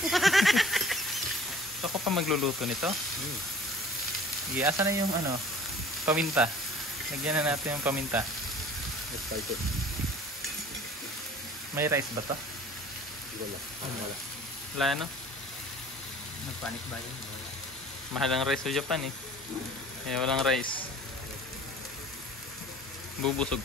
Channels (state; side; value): normal; both; correlation 0.48